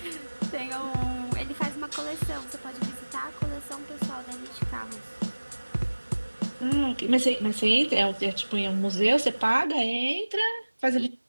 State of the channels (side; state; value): both; inverted; correlation -1.00